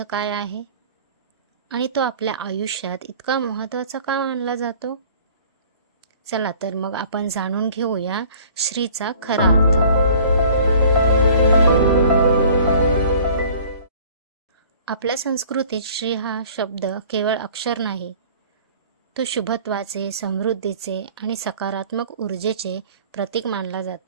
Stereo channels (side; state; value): both; inverted; correlation -0.50